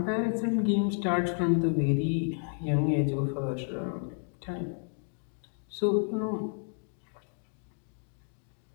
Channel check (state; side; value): silent; right; digital silence